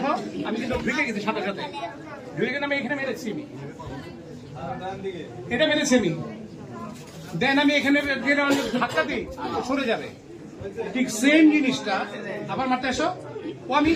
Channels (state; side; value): identical; both; correlation 1.00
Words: আমি কিন্তু ঢুকে গেছি সাথে সাথে। ঢুকে গেলে আমি এখানে মেরেছি, আমি এটা মেরেছি আমি। দেন আমি এখানে ধাক্কা দিই, সরে যাবে। ঠিক সেম জিনিসটা আবার মারতে আসো, ও আমি